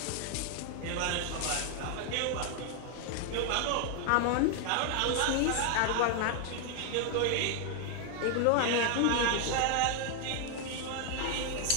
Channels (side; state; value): both; different; correlation 0.00